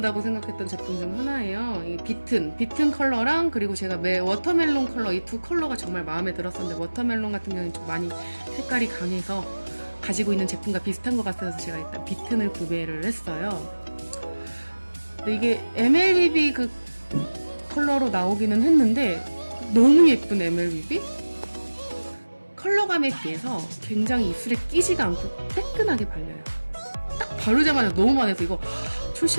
생각했던 제품 중 하나예요. 이 비튼 컬러랑 그리고 제가 워터멜론 컬러 이 두 컬러가 정말 마음에 들었었는데 워터멜론 같은 경우는 좀 많이 색깔이 강해서 가지고 있는 제품과 비슷한 것 같아서 제가 일단 비튼을 구매를 했어요. 근데 이게 MLBB 그 컬러로 나오기는 했는데 너무 예쁜 MLBB? 컬러감에 비해서 굉장히 입술에 끼지가 않고 뜨끈하게 발려요. 딱 바르자마자 너무 많아서 이거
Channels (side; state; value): both; inverted; correlation -1.00